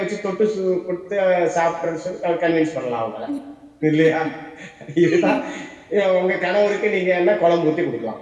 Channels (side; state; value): both; identical; correlation 1.00